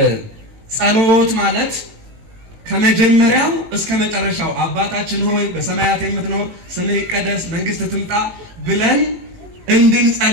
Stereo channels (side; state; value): left; late; 18 ms